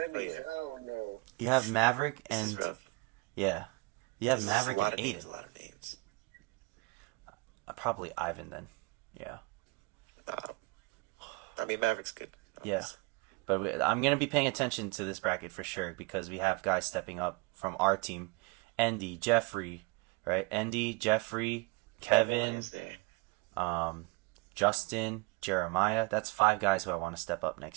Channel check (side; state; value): left; quieter; 25.7 dB